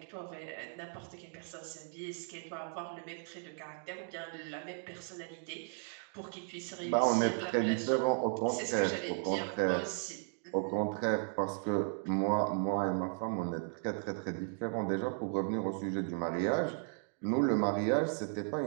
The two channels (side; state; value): left; silent; 54 dB below the other